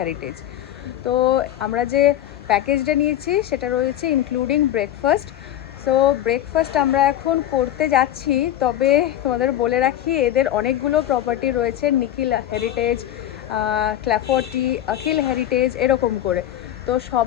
তো আমরা যে প্যাকেজটা নিয়েছি সেটা রয়েছে ইনক্লুডিং ব্রেকফাস্ট। সো ব্রেকফাস্ট আমরা এখন করতে যাচ্ছি, তবে তোমাদের বলে রাখি এদের অনেকগুলো প্রপার্টি রয়েছে, নিখিল হেরিটেজ, ক্ল্যাফোর্টি, অখিল হেরিটেজ এরকম করে। তো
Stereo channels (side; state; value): right; quieter; 12.1 dB